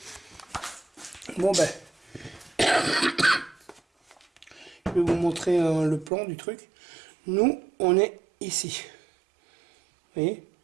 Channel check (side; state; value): left; drops out; at 6.1 s